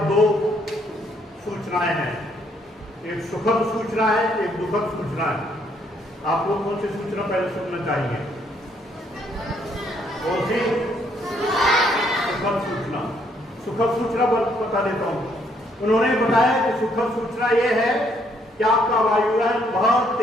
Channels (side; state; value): both; normal; correlation 0.69